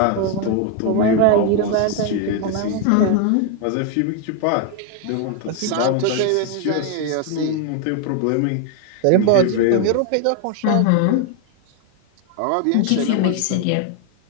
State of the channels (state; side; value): different; both; correlation 0.01